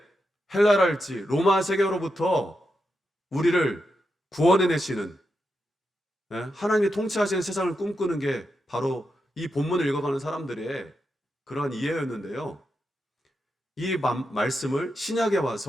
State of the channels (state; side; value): normal; both; correlation 0.86